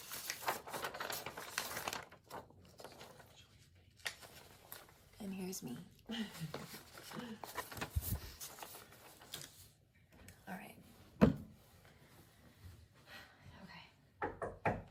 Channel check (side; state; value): both; identical; correlation 1.00